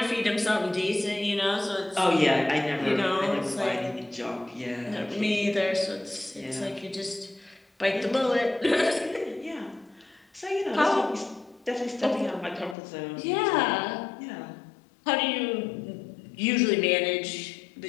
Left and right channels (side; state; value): right; drops out; at 12.8 s